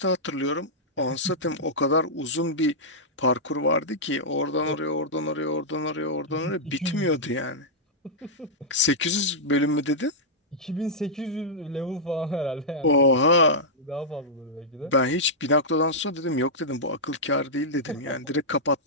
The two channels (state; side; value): normal; both; correlation -0.10